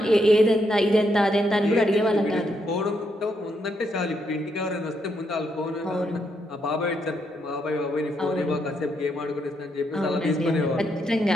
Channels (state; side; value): normal; both; correlation 0.78